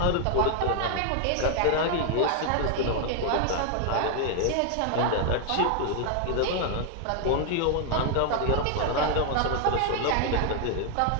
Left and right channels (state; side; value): different; both; correlation 0.00